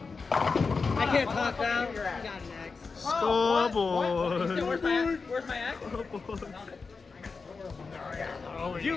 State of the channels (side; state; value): right; quieter; 4.6 dB